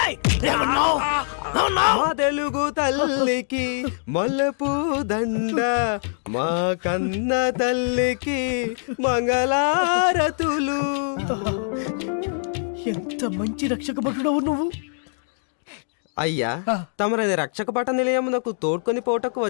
ఏమన్నావ్? ఏమన్నావ్? మా తెలుగు తల్లికి మల్లెపూ దండ, మా కన్న తల్లికి మంగళారతులు. ఎంత మంచి రక్షక భటుడవు నువ్వు. అయ్యా, తమరది రక్షక పట నిలయమునకు తోడ్కొని పోటకు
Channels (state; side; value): silent; right; digital silence